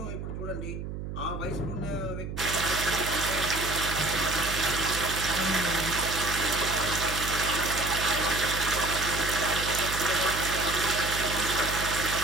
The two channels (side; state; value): right; noise; hum, 7 dB below the sound